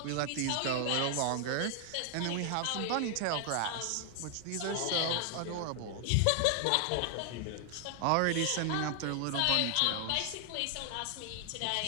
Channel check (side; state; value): both; different; correlation 0.00